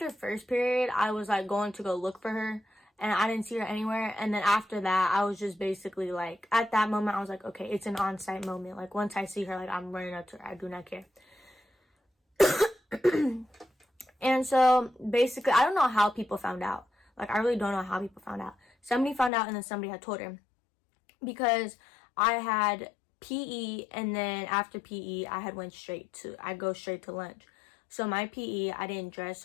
first period I was like going to go look for her and I didn't see her anywhere. And then after that I was just basically like, at that moment I was like, okay, it's an on-site moment. Like once I see her, like I'm running up to her. I do not care. And so basically, I don't know how people found out. Like I really don't know how people found out. Somebody found out and then somebody had told her, because I had PE, and then after PE I had go straight to lunch. So my PE, I didn't dress,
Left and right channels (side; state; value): right; drops out; at 19.3 s